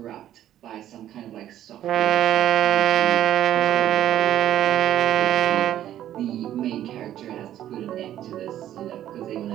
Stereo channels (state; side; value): quieter; left; 11.9 dB